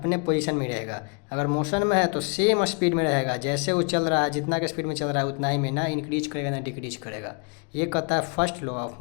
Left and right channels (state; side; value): quieter; right; 37.6 dB